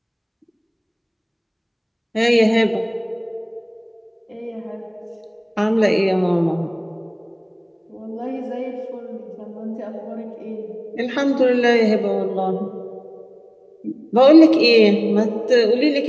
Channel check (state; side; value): identical; both; correlation 1.00